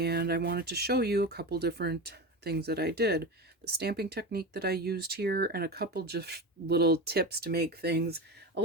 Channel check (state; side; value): normal; both; correlation 0.24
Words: I wanted to show you a couple different things that I did. The stamping technique that I used here, and a couple just little tips to make things a